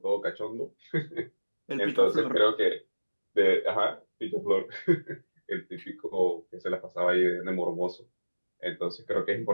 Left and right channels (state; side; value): inverted; both; correlation -1.00